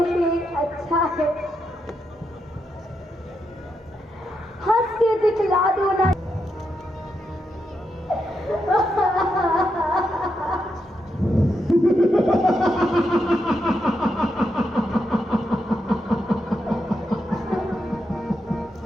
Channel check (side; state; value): both; normal; correlation 0.83